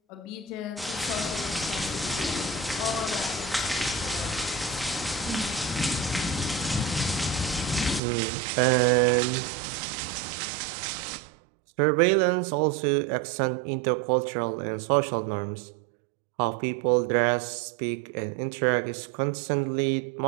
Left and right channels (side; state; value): left; drops out; at 8.0 s